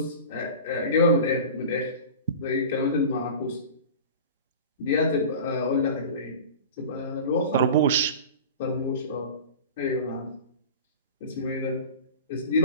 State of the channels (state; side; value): inverted; both; correlation -0.35